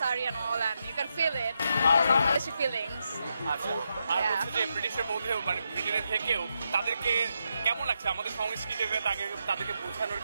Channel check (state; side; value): inverted; both; correlation -0.83